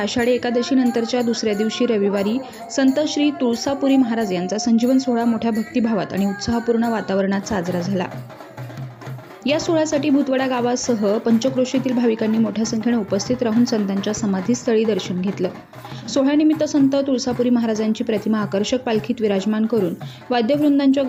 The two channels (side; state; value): both; identical; correlation 1.00